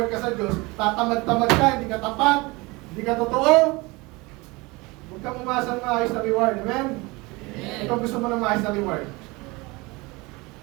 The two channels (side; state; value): left; quieter; 24.3 dB